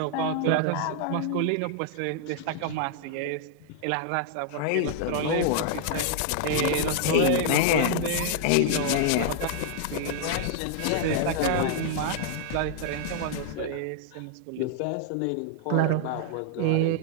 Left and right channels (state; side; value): different; both; correlation -0.01